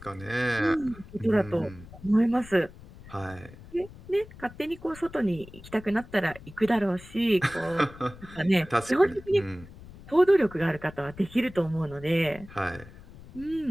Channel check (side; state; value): left; noise; rumble, 18 dB below the sound